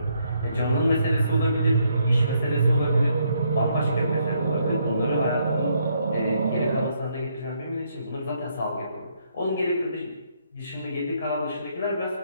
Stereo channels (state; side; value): inverted; both; correlation -0.73